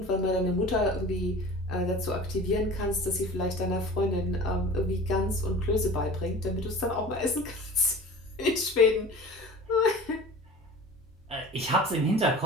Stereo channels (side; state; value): both; normal; correlation 0.39